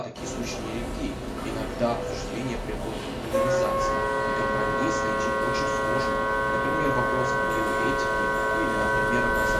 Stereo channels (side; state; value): both; identical; correlation 1.00